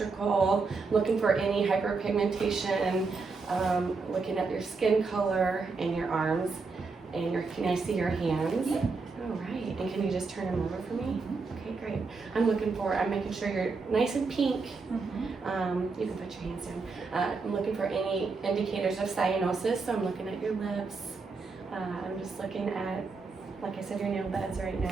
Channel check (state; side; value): quieter; left; 4.4 dB